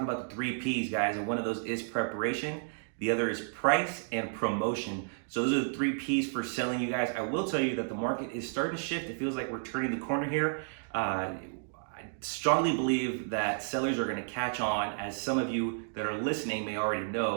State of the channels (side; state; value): left; silent; digital silence